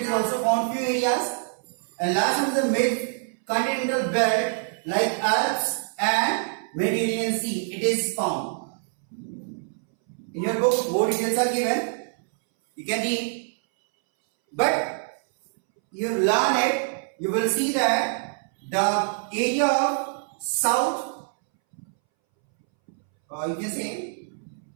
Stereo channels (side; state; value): left; silent; 62 dB below the other